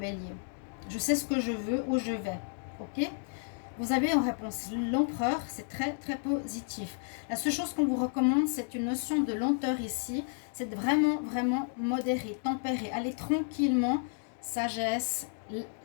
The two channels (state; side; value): silent; right; 57 dB below the other